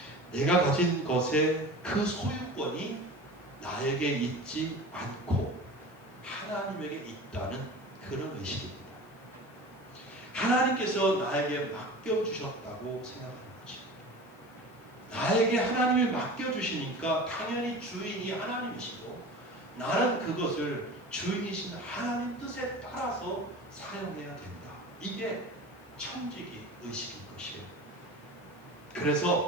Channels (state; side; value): noise; left; hiss, 30 dB below the sound